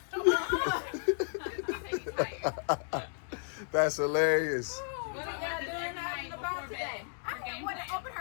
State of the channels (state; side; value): silent; right; 56 dB below the other